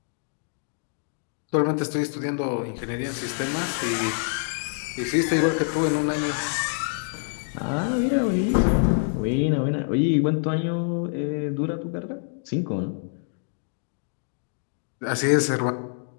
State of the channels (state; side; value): silent; right; digital silence